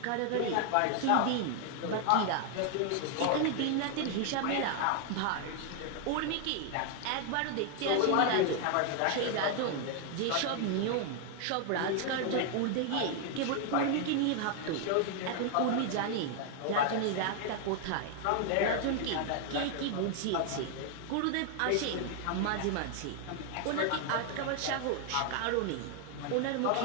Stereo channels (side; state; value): both; different; correlation 0.00